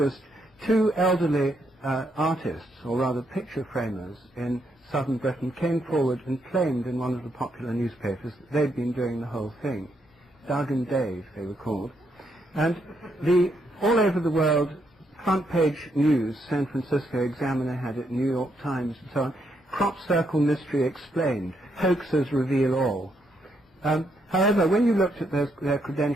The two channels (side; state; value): both; normal; correlation 0.77